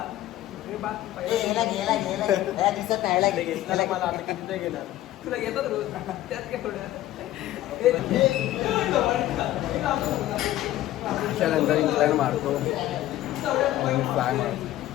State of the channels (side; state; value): right; quieter; 14.5 dB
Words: गेला गेला गेला दिसत नाही गेला मला आता किती गेला तुला येतात रोज त्यात काय थोडं त्याच्यानंतर इंक्लाइन मारतो आणि फ्लाय मारतो